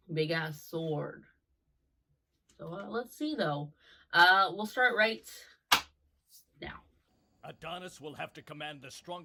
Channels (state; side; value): identical; both; correlation 1.00